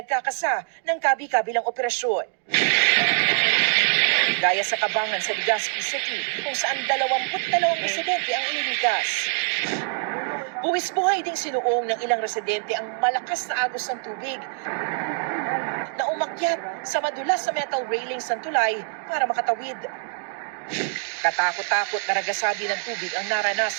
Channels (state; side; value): silent; left; digital silence